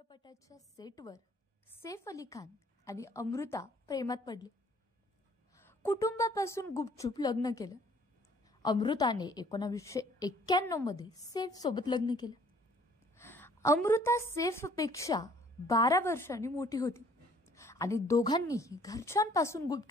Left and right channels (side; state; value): both; normal; correlation 0.58